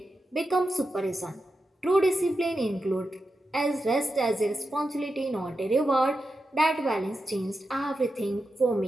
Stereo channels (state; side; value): normal; both; correlation 0.89